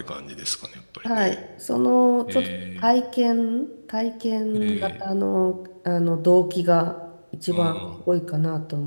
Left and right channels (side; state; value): both; inverted; correlation -1.00